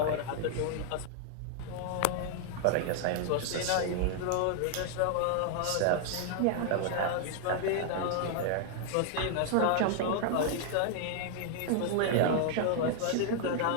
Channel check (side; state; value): both; different; correlation 0.00